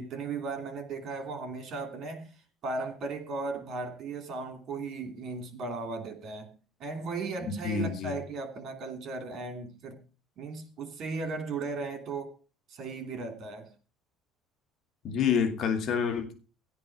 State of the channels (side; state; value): both; normal; correlation 0.46